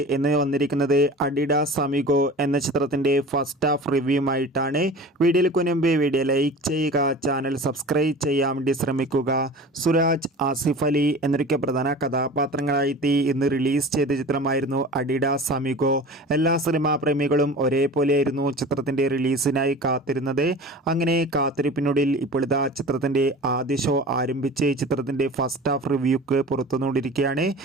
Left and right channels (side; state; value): both; normal; correlation 0.38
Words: ഇന്ന് വന്നിരിക്കുന്നത് അഡിഡാസ് അമിഗോ എന്ന ചിത്രത്തിൻ്റെ ഫസ്റ്റ് ഹാഫ് റിവ്യൂമായിട്ടാണ്. വീഡിയോയിലേക്ക് മുൻപ് വീഡിയോ ലൈക്ക് ചെയ്യുക, ചാനൽ സബ്സ്ക്രൈബ് ചെയ്യാൻ വേണ്ടി ശ്രമിക്കുക. സുരാജ്, ആസിഫ് അലി എന്നൊക്കെ പ്രധാന കഥാപാത്രങ്ങളായി ഇന്ന് റിലീസ് ചെയ്ത ചിത്രമായിരുന്നു അഡിഡാസ് അമിഗോ. എല്ലാ സിനിമാ പ്രേമികളും ഒരേപോലെയായിരുന്നു ചിത്രത്തിൻ്റെ റിലീസിനായി കാത്തിരുന്നത്. അങ്ങനെ കാത്തിരിപ്പിനൊടുവിൽ ഇപ്പോഴത്തെ ചിത്രത്തിൻ്റെ ആദ്യ ഷോ ആരംഭിച്ച് ചിത്രത്തിൻ്റെ ഫസ്റ്റ് ഹാഫ് റിവ്യൂക്ക് പുറത്തുനിന്നുകൊണ്ടിരിക്കുകയാണ്.